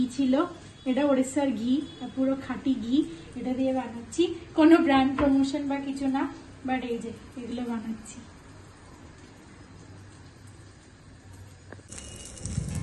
ছিল এটা ওড়িশার ঘি পুরো খাঁটি ঘি এটা দিয়ে বানাচ্ছি কোনো ব্র্যান্ড প্রমোশন বা কিছু না বাট এই যে এগুলো বানাচ্ছি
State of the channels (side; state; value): both; identical; correlation 1.00